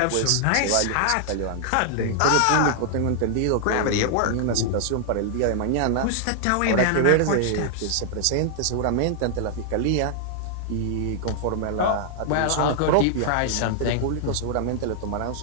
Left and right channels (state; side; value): different; both; correlation -0.01